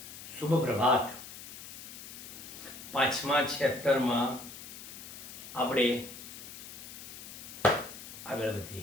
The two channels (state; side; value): noise; left; hiss, 12 dB below the sound